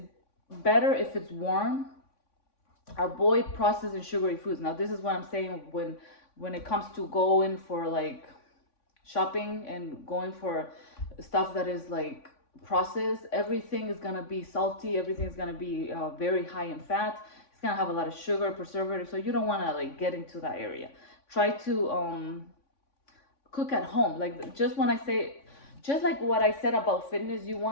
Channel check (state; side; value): late; right; 3.5 ms